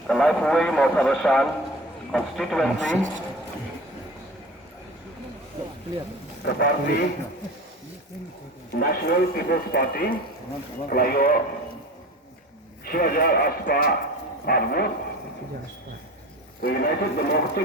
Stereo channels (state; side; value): normal; both; correlation 0.36